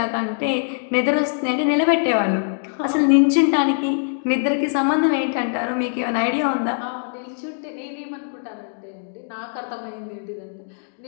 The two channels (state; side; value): silent; right; digital silence